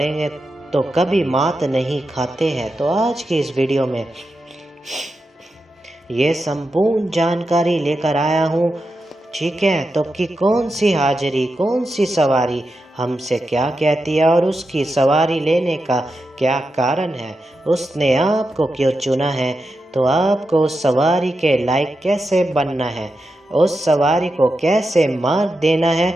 तो कभी मात नहीं खाते हैं। तो आज की इस वीडियो में ये संपूर्ण जानकारी लेकर आया हूँ, ठीक है। तो कि कौन सी हाजिरी, कौन सी सवारी हमसे क्या कहती है और उसकी सवारी लेने का क्या कारण है, उसने आपको क्यों चुना है। तो आपको उस सवारी के लायक कैसे बनना है, उस सवारी को कैसे मार्ग देना है।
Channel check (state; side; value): normal; both; correlation 0.88